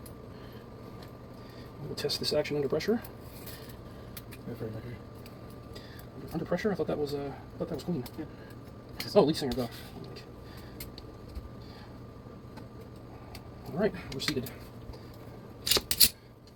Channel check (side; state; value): both; identical; correlation 1.00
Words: We'll test this action under pressure. Under pressure? I thought that was clean. Yeah. Oh, lead singer go. All right, we're seated.